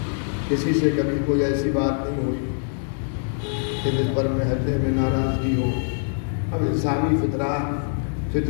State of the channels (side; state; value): right; silent; digital silence